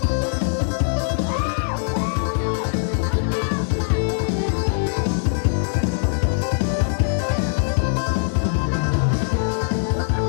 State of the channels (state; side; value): silent; right; digital silence